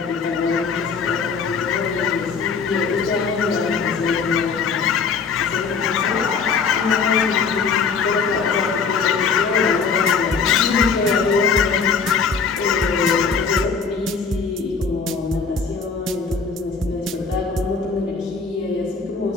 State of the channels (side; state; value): right; quieter; 5.4 dB